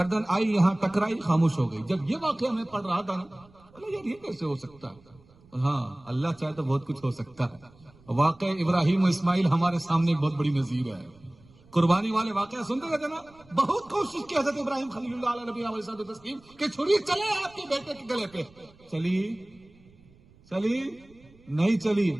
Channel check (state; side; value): noise; right; rumble, 27 dB below the sound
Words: آئی یہاں ٹکرائی، خاموش ہو گئی. جب یہ واقعہ میں پڑھ رہا تھا نا، یار یہ کیسے ہو سکتا ہے؟ ہاں اللہ چاہے تو بہت کچھ ہو سکتا ہے. واقع ابراہیم و اسماعیل ہمارے سامنے ایک بہت بڑی نظیر ہے. قربانی والے واقعہ سنتے رہتے نا. بہت کوشش کی حضرت ابراہیم خلیل اللہ علیہ نبی علیہ الصلوۃ والتسلیم کہ چھری چلے آپ کے بیٹے کے گلے پہ. چلی نہیں چلی،